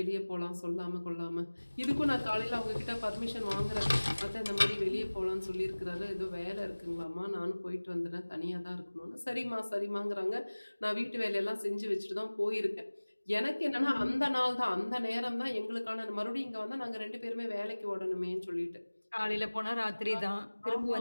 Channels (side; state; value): both; inverted; correlation -1.00